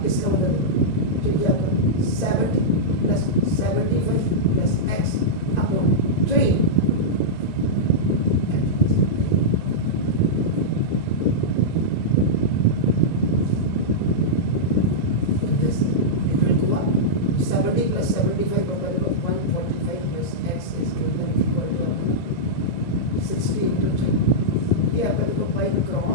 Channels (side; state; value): right; late; 1.9 ms